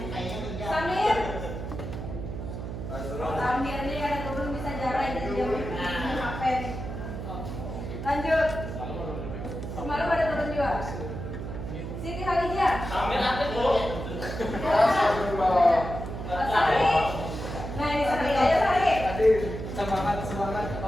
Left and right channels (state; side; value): noise; right; hum, 7 dB below the sound